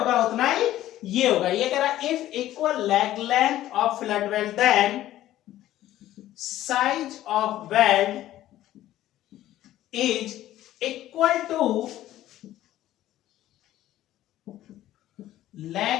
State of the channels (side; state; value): right; quieter; 13.8 dB